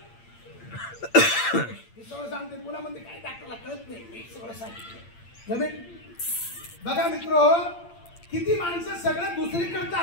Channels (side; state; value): right; late; 8.7 ms